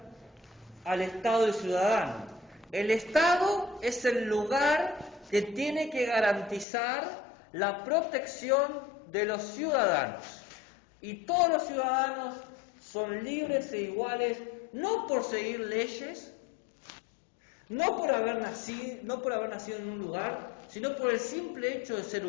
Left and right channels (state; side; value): drops out; right; at 6.7 s